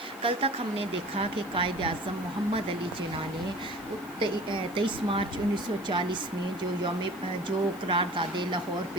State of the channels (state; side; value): noise; left; hiss, 21 dB below the sound